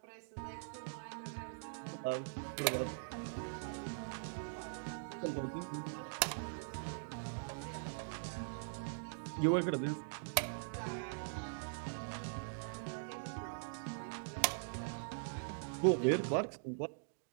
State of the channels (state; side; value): silent; left; digital silence